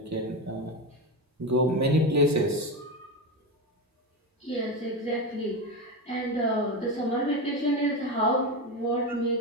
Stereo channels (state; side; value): normal; both; correlation 0.17